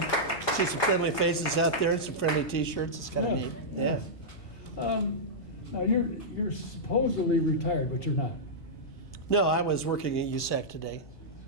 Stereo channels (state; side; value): late; right; 1.3 ms